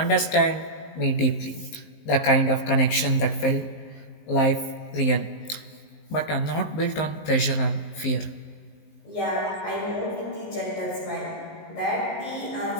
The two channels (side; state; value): right; late; 19 ms